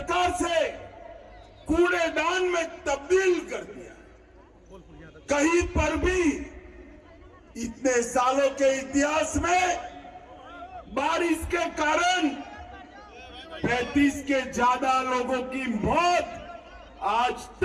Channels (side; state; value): both; identical; correlation 1.00